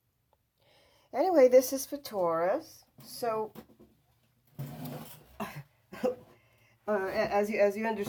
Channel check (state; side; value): identical; both; correlation 1.00